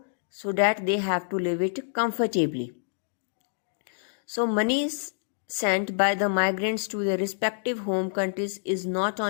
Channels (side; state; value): right; silent; digital silence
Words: that they have to live it comfortably. So money is sent by the migrants to their respective home countries is not